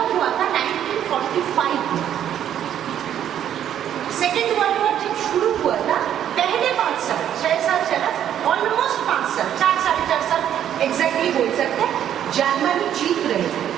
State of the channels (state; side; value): quieter; left; 10.3 dB